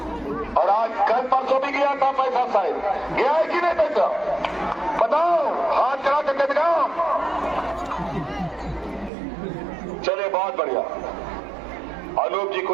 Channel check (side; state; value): left; drops out; at 9.1 s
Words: और आज कल परसों भी गया था पैसा, शायद गया है कि नहीं पैसा बताओ, हाथ करा करके दिखाओ। चलिए बहुत बढ़िया, अनूप जी